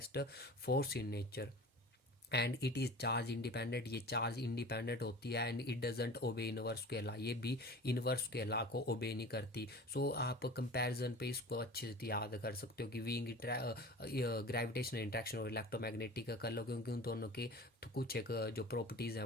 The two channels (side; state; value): both; normal; correlation 0.38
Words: force in nature. And it is charge independent, ये चार्ज इंडिपेंडेंट होती है। एंड इट डजेंट ओबे इनवर्स के लॉ, ये भी इनवर्स के लॉ को ओबे नहीं करती। सो आप कंपैरिजन पे इसको अच्छे से याद कर सकते हो कि वीक ग्रेविटेशनल इंटरेक्शन और इलेक्ट्रोमैग्नेटिक का कर लो, क्योंकि उन दोनों के तो कुछ एक जो प्रॉपर्टीज़ हैं